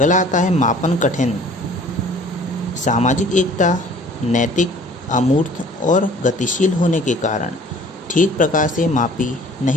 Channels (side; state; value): both; normal; correlation 0.51